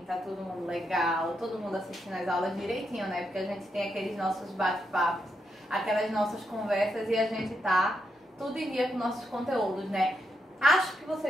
Tá todo mundo legal? Todo mundo assistindo as aulas direitinho, né? Porque a gente tem aqueles nossos bate-papos, aquelas nossas conversas e a gente tá tudo em dia com nossos conteúdos, né? Acho que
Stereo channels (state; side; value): normal; both; correlation 0.82